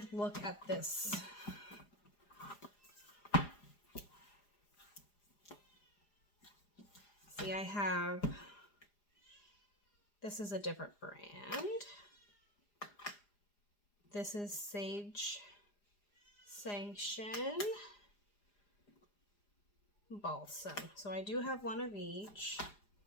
look at this. See, I have, this is a different brand. This is Sage Sanction Balsam. So I do have one of each.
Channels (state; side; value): late; right; 4.9 ms